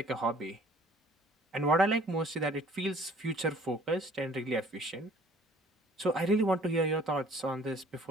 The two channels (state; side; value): normal; both; correlation 0.54